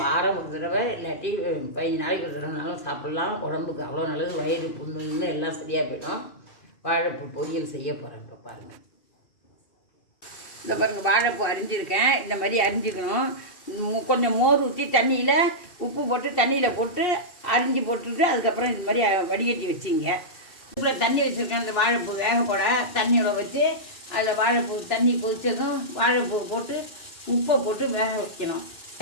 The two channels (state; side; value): late; right; 2.7 ms